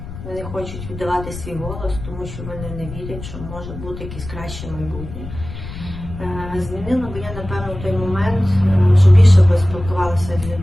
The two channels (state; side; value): noise; left; rumble, 11 dB below the sound